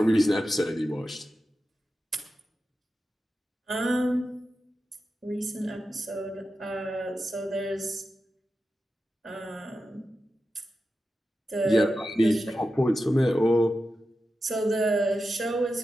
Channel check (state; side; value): normal; both; correlation 0.91